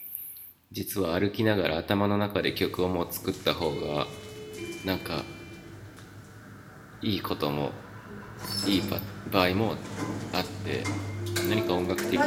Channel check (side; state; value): both; identical; correlation 1.00